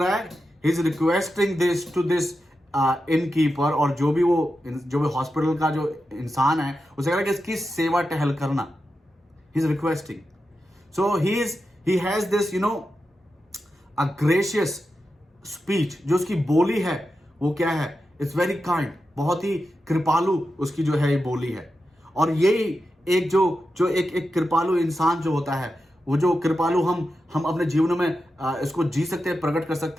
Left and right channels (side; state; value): both; normal; correlation 0.90